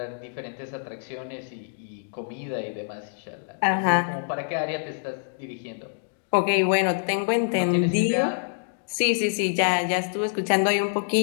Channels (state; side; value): silent; right; digital silence